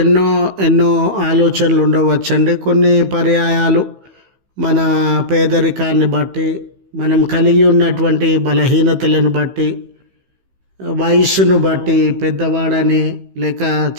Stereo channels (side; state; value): left; late; 15 ms